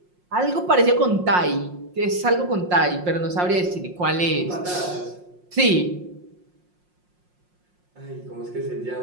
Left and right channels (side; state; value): left; late; 5.6 ms